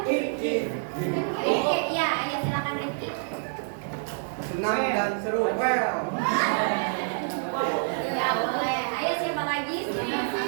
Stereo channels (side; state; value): left; silent; 58 dB below the other